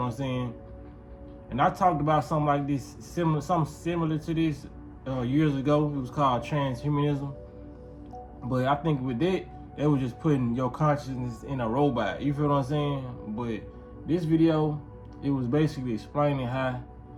I'm saying? And I talked about something like this, something similar to this years ago. It was called transhumanism. But I think with that, it was just putting your consciousness in a robot. You feel what I'm saying? But this video, it was basically explaining how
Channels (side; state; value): both; identical; correlation 1.00